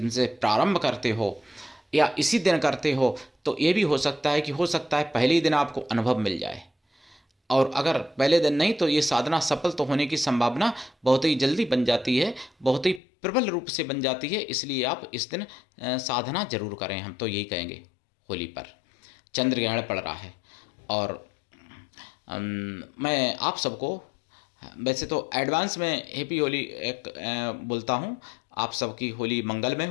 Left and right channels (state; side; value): drops out; right; at 13.0 s